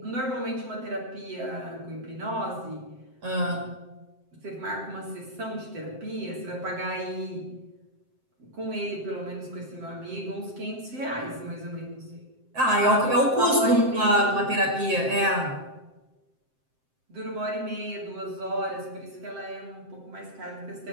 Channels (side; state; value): left; late; 7.7 ms